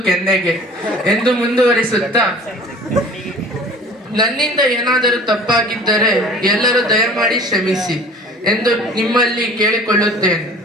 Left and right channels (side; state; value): both; normal; correlation 0.46